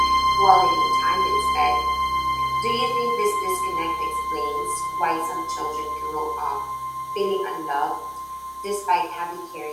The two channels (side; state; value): both; identical; correlation 1.00